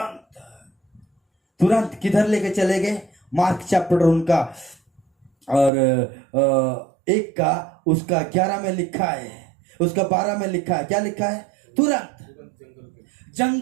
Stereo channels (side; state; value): left; drops out; at 5.7 s